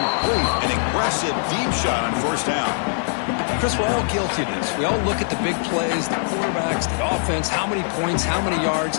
An aggressive deep shot on first down. Chris, we're all guilty of this. We all look at the big plays, the quarterbacks, the offense, how many points, how many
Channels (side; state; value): right; silent; digital silence